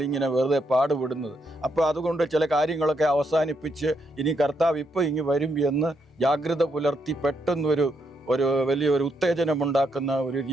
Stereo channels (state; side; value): normal; both; correlation 0.78